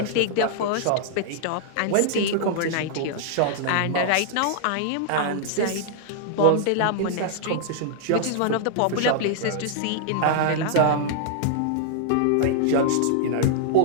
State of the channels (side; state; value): both; different; correlation -0.01